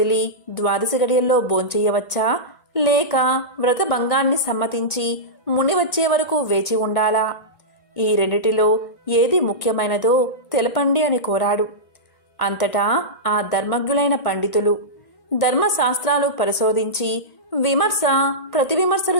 ద్వాదశి గడియల్లో భోంచెయ్యవచ్చా, లేక వ్రత భంగాన్ని సమ్మతించి ముని వచ్చే వరకు వేచి ఉండాలా? ఈ రెండిటిలో ఏది ముఖ్యమైనదో తెలపండి అని కోరాడు. అంతటా ఆ ధర్మజ్ఞులైన పండితులు ధర్మశాస్త్రాలు పరిశోధించి విమర్శ ప్రతివిమర్శలు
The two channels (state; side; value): late; right; 1.5 ms